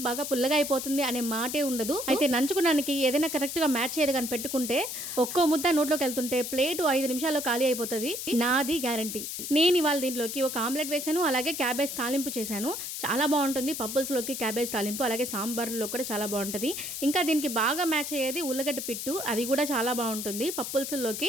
బాగా పుల్లగా అయిపోతుంది అనే మాటే ఉండదు. అయితే నంచుకోవడానికి ఏదైనా కరెక్ట్ గా మ్యాచ్ చేయదు కానీ పెట్టుకుంటే ఒక్కో ముద్ద నోట్లోకి వెళ్తుంటే ప్లేట్ 5 నిమిషాల్లో ఖాళీ అయిపోతుంది, నాది గ్యారంటీ. నేను ఇవాళ దీంట్లోకి ఒక ఆమ్లెట్ వేసాను, అలాగే క్యాబేజ్ తాలింపు చేశాను. చాలా బాగుంటుంది పప్పుల్స్లోకి క్యాబేజ్ తాలింపు, అలాగే సాంబార్లో కూడా చాలా బాగుంటుంది. ఇంకా దీనికి బాగా మ్యాచ్ అయ్యేది ఉల్లగడ్డ పిట్టు, అది కూడా చాలా బాగుంటుంది.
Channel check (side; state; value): left; noise; hiss, 6 dB below the sound